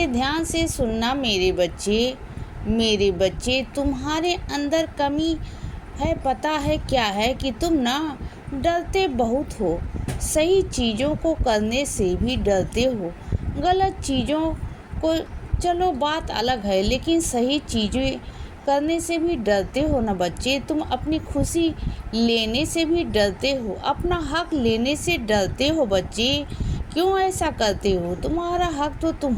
ध्यान से सुनना मेरे बच्चे। मेरे बच्चे, तुम्हारे अंदर कमी है, पता है क्या है कि तुम ना डरते बहुत हो। सही चीज़ों को करने से भी डरते हो। गलत चीज़ों को चलो बात अलग है, लेकिन सही चीज़ें करने से भी डरते हो ना बच्चे। तुम अपनी खुशी लेने से भी डरते हो, अपना हक लेने से डरते हो बच्चे। क्यों ऐसा करते हो? तुम्हारा हक तो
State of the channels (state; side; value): identical; both; correlation 1.00